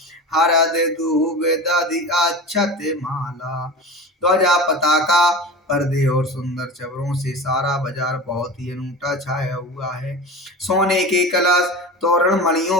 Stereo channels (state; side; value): normal; both; correlation 0.31